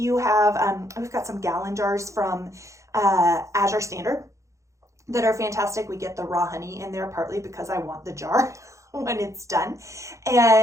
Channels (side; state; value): left; late; 0.15 ms